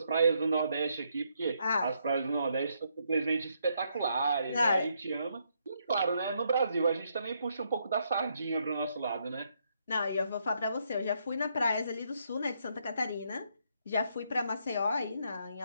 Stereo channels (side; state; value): both; inverted; correlation -0.75